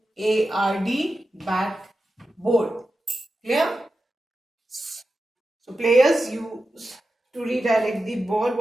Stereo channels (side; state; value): both; normal; correlation 0.92